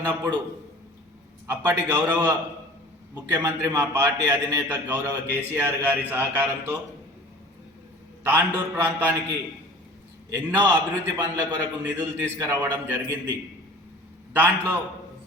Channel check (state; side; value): normal; both; correlation 0.44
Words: అప్పటి గౌరవ ముఖ్యమంత్రి మా పార్టీ అధినేత గౌరవ కేసీఆర్ గారి సహకారంతో తాండూర్ ప్రాంతానికి ఎన్నో అభివృద్ధి పనుల కొరకు నిధులు తీసుకురావడం జరిగింది. దాంట్లో